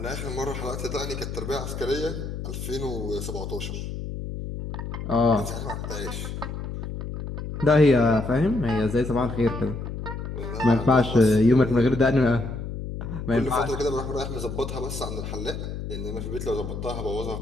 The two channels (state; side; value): noise; left; hum, 6 dB below the sound